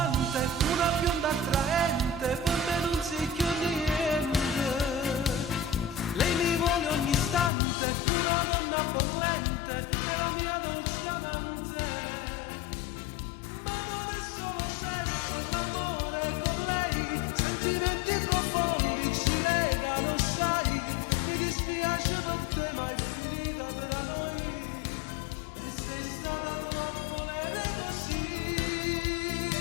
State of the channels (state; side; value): drops out; right; at 7.5 s